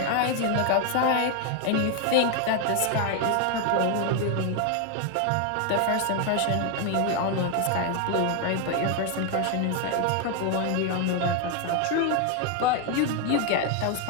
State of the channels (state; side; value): different; both; correlation 0.01